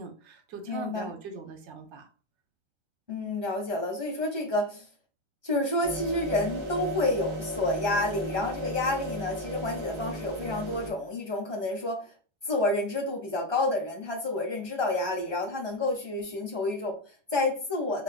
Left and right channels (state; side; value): late; left; 1.2 ms